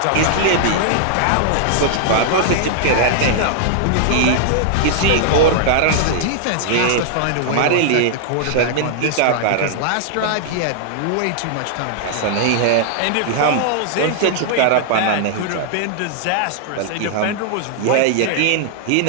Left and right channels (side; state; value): both; different; correlation -0.01